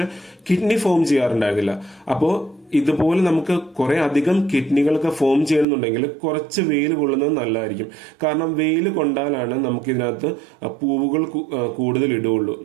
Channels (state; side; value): drops out; left; at 5.7 s